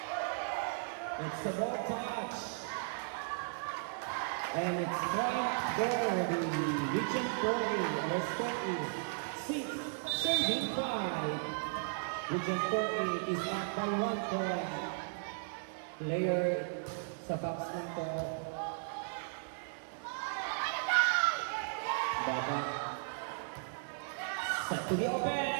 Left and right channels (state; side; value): silent; left; digital silence